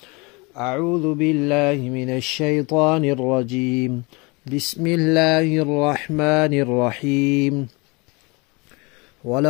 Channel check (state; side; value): quieter; right; 27.5 dB